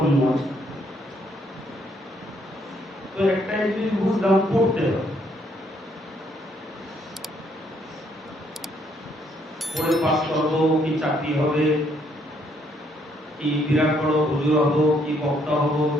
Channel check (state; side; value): normal; both; correlation 0.70